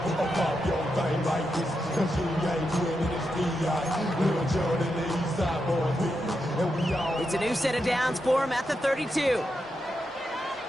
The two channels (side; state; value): both; normal; correlation 0.86